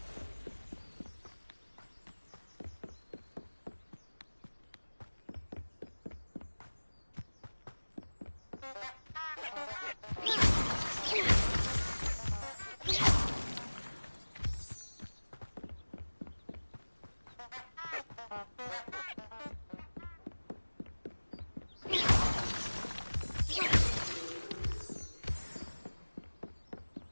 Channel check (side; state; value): both; inverted; correlation -1.00